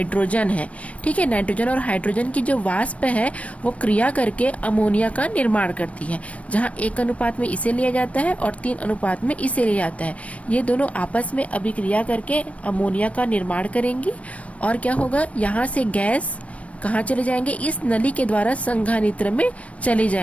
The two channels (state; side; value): late; right; 0.065 ms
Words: है, ठीक है, नाइट्रोजन और हाइड्रोजन की जो वाष्प है वो क्रिया करके अमोनिया का निर्माण करती है, जहाँ 1 अनुपात में इसे लिया जाता है और 3 अनुपात में इसे लिया जाता है। ये दोनों आपस में अभिक्रिया करके अमोनिया का निर्माण करेंगी और क्या होगा? यहाँ से गैस कहाँ चले जाएंगे? इस नली के द्वारा संघानित्र में चले